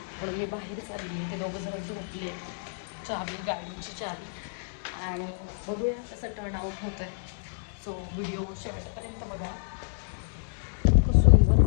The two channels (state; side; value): silent; right; digital silence